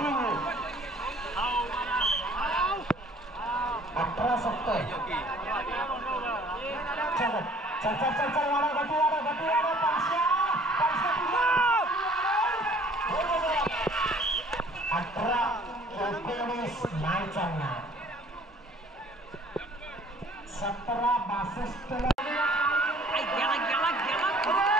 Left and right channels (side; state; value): both; normal; correlation 0.54